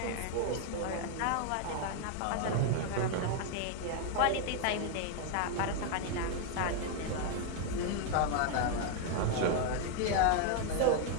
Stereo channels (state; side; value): different; both; correlation 0.01